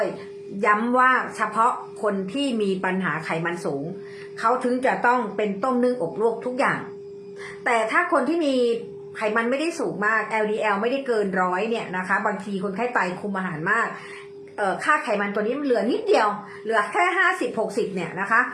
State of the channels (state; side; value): identical; both; correlation 1.00